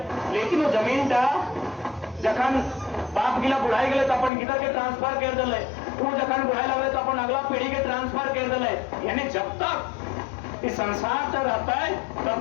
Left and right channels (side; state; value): right; drops out; at 4.3 s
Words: लेकिन वो जमीन टा जखन बाप गिला बुढ़ाई गए तो अपन गिदर के ट्रांसफर कर दिले वो जखन बुढ़ाई लगे तो अपन अगला पीढ़ी के ट्रांसफर कर दिले यानी जब तक इस संसार तक रहता है